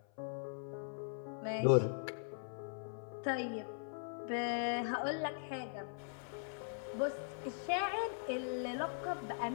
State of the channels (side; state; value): right; silent; 51 dB below the other